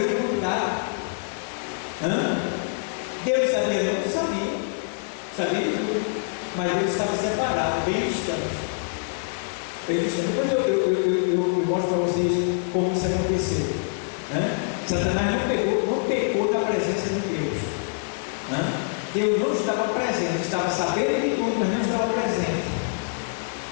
quantidade. Deus sabia, não sabia. Sabia de tudo. Mas Deus estava separado, bem distante. Bem distante. Depois eu mostro para vocês como isso aconteceu. Satanás não pecou da presença de Deus. Deus não estava presente, estava sabendo de tudo, mas não estava presente.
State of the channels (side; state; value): right; silent; 62 dB below the other